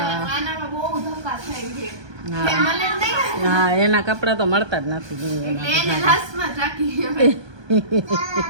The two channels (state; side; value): late; left; 1.2 ms